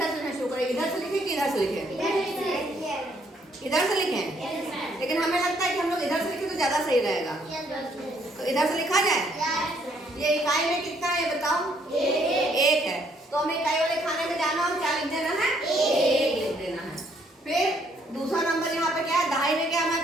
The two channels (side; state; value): both; normal; correlation 0.68